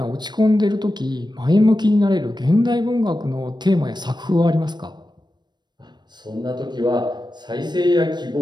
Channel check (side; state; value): left; late; 0.21 ms